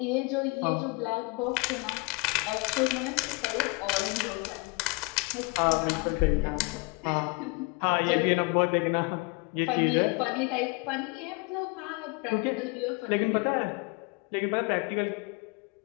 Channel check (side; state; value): right; quieter; 28.1 dB